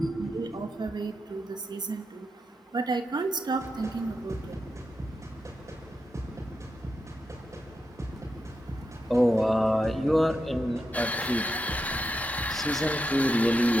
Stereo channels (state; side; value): normal; both; correlation 0.86